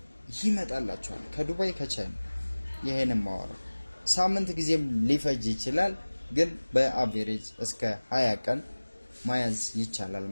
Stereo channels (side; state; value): both; inverted; correlation -1.00